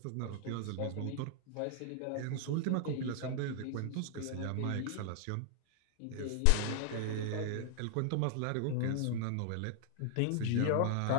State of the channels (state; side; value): different; both; correlation 0.00